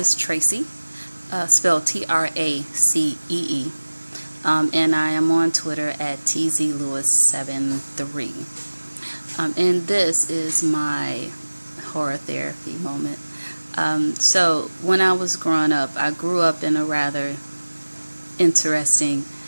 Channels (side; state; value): both; inverted; correlation -1.00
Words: Tracy, spelled Tracee. And I am on Twitter at tzlewis73. And this is my horror therapy moment. So when I was growing up, I grew up in a rather interesting